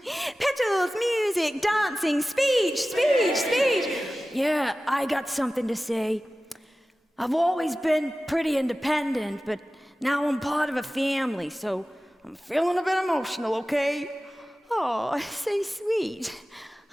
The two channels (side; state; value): both; normal; correlation 0.96